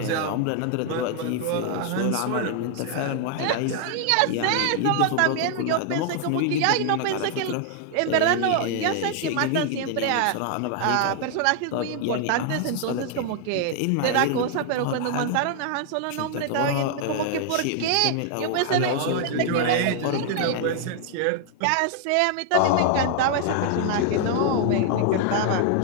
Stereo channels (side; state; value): both; different; correlation 0.00